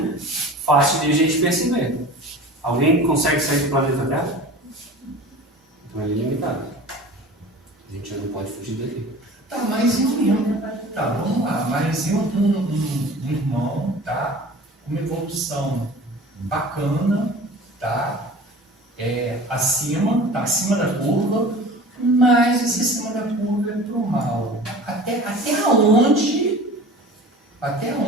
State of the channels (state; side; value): normal; both; correlation 0.40